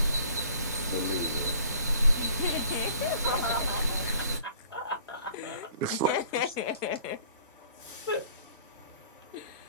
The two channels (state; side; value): inverted; both; correlation -0.53